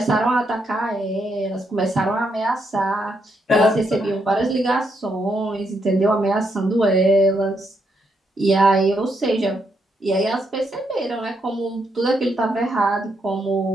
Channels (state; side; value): normal; both; correlation 0.78